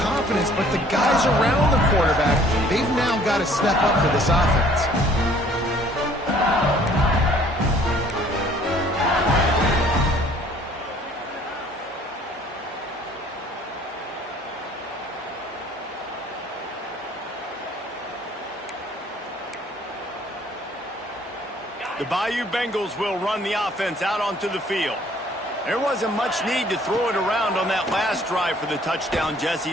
but the guys around the quarterback, they've now got to step up for this offense. The Bayou Bengals will run the offense out onto the field. There wasn't much need to throw it around on that last drive for the touchdown, Jesse.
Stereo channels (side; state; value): both; normal; correlation 0.57